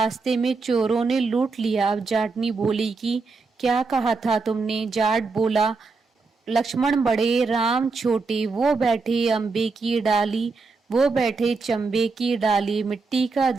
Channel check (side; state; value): left; quieter; 4.2 dB